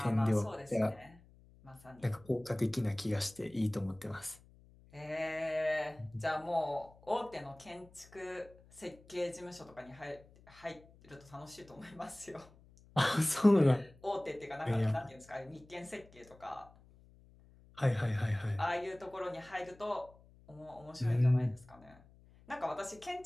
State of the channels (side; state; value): left; noise; hum, 25 dB below the sound